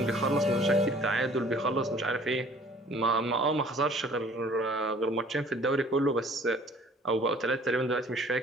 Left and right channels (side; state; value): both; normal; correlation 0.53